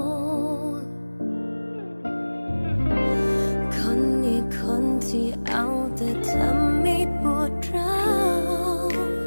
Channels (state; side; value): inverted; both; correlation -1.00